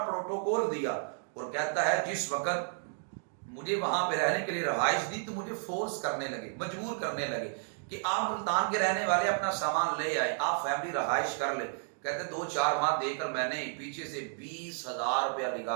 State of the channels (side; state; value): left; silent; digital silence